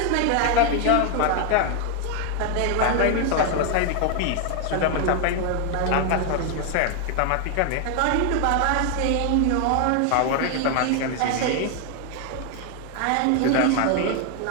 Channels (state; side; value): different; both; correlation 0.01